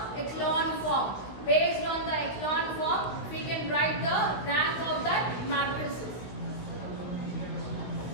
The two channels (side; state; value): right; late; 16 ms